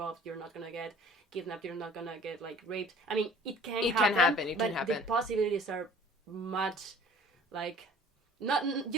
you're not going to get kidnapped, you're not going to get, like, raped. I mean, it can happen. But the possibilities are much, like,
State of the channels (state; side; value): normal; both; correlation 0.50